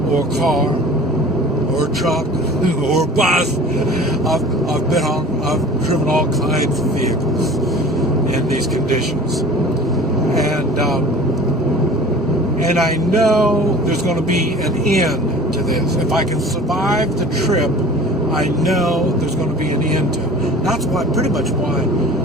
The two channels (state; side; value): normal; both; correlation 0.43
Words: or a car or a truck or a bus. I've driven all kinds of vehicles in these conditions, and I know there's going to be an end to this. If I can survive the trip, I know there's going to be an end to it. That's pretty much why